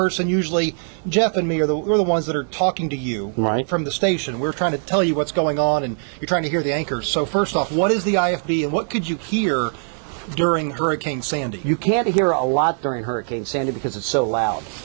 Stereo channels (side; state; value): left; silent; digital silence